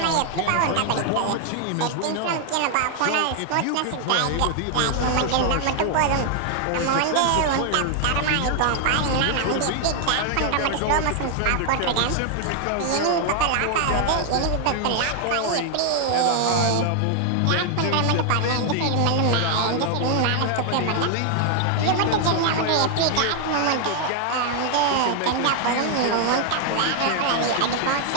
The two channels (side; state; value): both; different; correlation 0.00